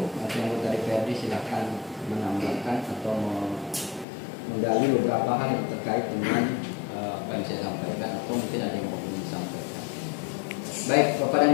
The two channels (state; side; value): drops out; right; at 4.0 s